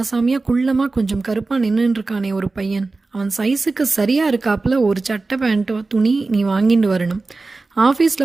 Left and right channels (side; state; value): left; quieter; 3.6 dB